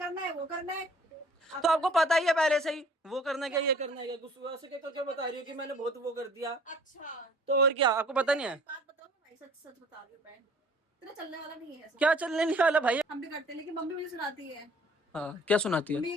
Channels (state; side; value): normal; both; correlation 0.52